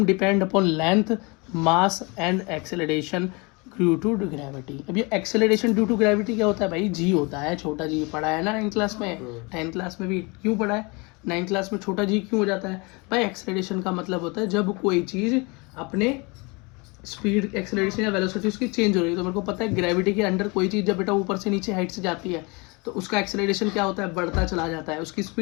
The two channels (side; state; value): right; quieter; 28.2 dB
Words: depend upon length, mass and acceleration due to gravity. अब ये एक्सेलरेशन ड्यू टू ग्रेविटी क्या होता है भाई, जी होता है, छोटा जी पढ़ा है ना 9th क्लास में, 10th क्लास में भी क्यों पढ़ा है, 9th क्लास में छोटा जी क्यों हो जाता है भाई। एक्सेलरेशन का मतलब होता है जब कोई चीज़ अपने स्पीड एक्सेलरेशन या वेलोसिटी उसकी चेंज हो रही है। तो मेरे को पता है ग्रेविटी के अंडर कोई चीज़ जब बेटा ऊपर से नीचे हाइट से जाती है तो उसका एक्सेलरेशन क्या होता है, बढ़ता चला जाता है, उसकी